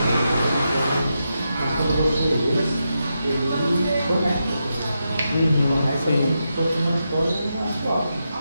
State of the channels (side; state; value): both; inverted; correlation -0.86